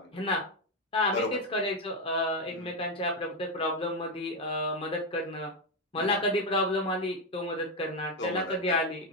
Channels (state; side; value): normal; both; correlation 0.07